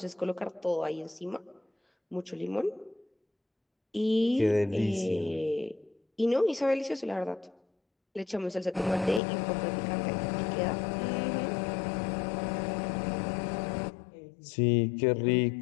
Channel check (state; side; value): drops out; right; at 9.2 s